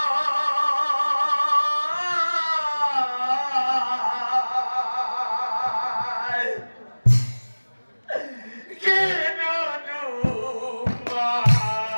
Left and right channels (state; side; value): inverted; both; correlation -1.00